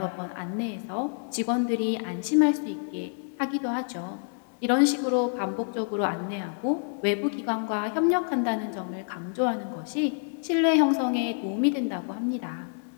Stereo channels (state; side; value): silent; right; 60 dB below the other